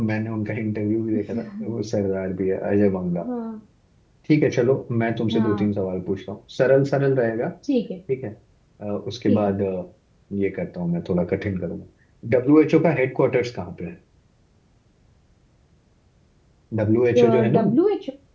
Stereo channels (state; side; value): identical; both; correlation 1.00